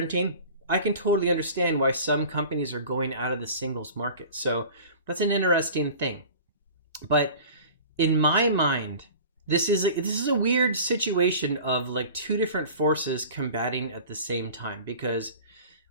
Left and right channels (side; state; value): both; inverted; correlation -0.40